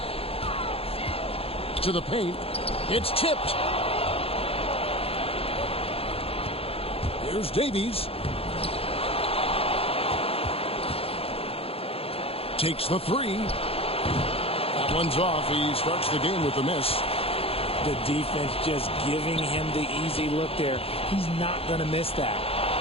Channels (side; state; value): right; late; 0.28 ms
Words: To the paint. It's tipped. Here's Davies. Takes the three. That one's off. He starts the game with a miss. The defense just giving him the easy look there. He's not going to miss that.